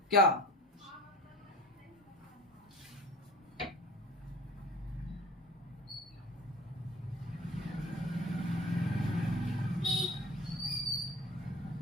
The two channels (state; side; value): normal; both; correlation 0.41